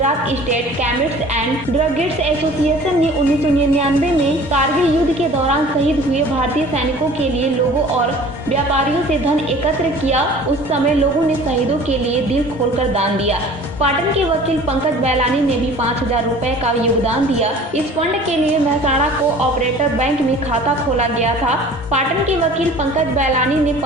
state chemist and druggist association ने 1999 में कारगिल युद्ध के दौरान शहीद हुए भारतीय सैनिकों के लिए लोगों और व्यापारियों से धन एकत्र किया। उस समय लोगों ने शहीदों के लिए दिल खोलकर दान दिया। पाटन के वकील पंकज बैलानी ने भी 5,000 रुपए का योगदान दिया। इस फंड के लिए मेहसाणा को ऑपरेटर बैंक में खाता खोला गया था। पाटन के वकील पंकज बैलानी ने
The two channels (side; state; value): both; normal; correlation 0.46